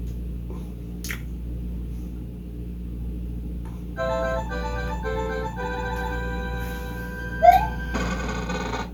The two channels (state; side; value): identical; both; correlation 1.00